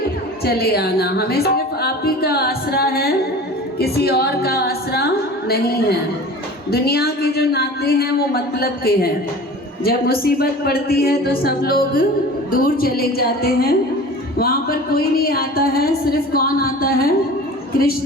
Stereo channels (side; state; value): both; normal; correlation 0.39